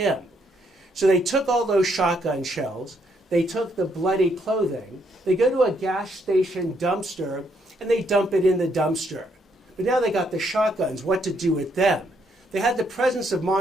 So they took all those shotgun shells, they took the bloody clothing, they go to a gas station dumpster, and they dump it in the dumpster. But now they got the shotguns, what to do with them? They had the presence of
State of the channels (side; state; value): both; normal; correlation 0.73